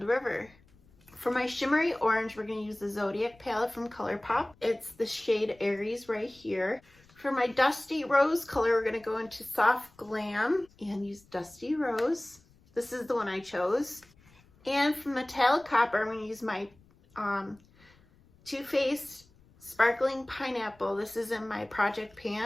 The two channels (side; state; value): left; noise; rumble, 29 dB below the sound